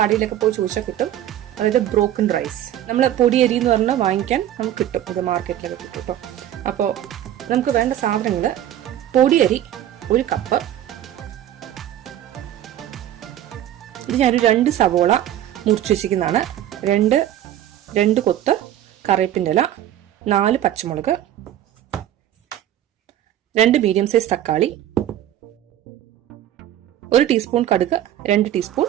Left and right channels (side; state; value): left; quieter; 11.8 dB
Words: കടയിലൊക്കെ പോയി ചോദിച്ചാൽ കിട്ടും. അതായത് ബ്രോക്കൺ റൈസ്. നമ്മൾ പൊടിയരി എന്ന് പറഞ്ഞാൽ വാങ്ങിക്കാൻ നമുക്ക് കിട്ടും, അത് മാർക്കറ്റിലൊക്കെ കിട്ടും കേട്ടോ. അപ്പോൾ നമുക്ക് വേണ്ട സാധനങ്ങൾ: പൊടിയരി 1 കപ്പ്, ഇത് ഞാനൊരു 2 സവോള മുറിച്ച് വെച്ചിരിക്കുന്നതാണ്, 2 കൊത്ത് കറിവേപ്പിൻ്റെ ഇല, 4 പച്ചമുളക്, 2 മീഡിയം സൈസ് തക്കാളി, 1 ടീസ്പൂൺ കടുക്, 2 ടീസ്പൂൺ